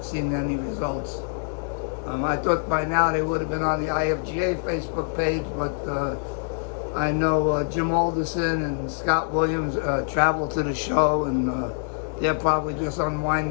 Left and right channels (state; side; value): silent; right; digital silence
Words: seen any results. I thought by now they would have been on the IFGA Facebook page, but I know Jim Alderson and Scott Williams traveled to the show, and they're probably just